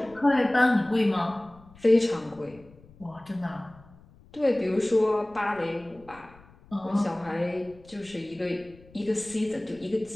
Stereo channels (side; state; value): left; noise; rumble, 25 dB below the sound